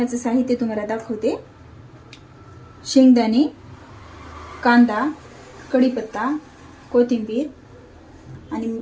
साहित्य तुम्हाला दाखवते। शेंगदाणे, कांदा, कढीपत्ता, कोथिंबीर आणि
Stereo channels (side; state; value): both; identical; correlation 1.00